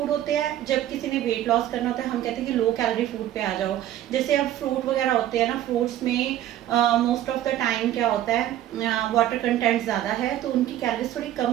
होते हैं, जब किसी ने वेट लॉस करना होता है, हम कहते हैं कि लो कैलोरी फूड पे आ जाओ। जैसे अब फ्रूट वगैरह होते हैं ना, फ्रूट्स में मोस्ट ऑफ द टाइम क्या होता है, वाटर कंटेंट ज़्यादा है, तो उनकी कैलोरीज थोड़ी कम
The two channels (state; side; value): quieter; left; 12.4 dB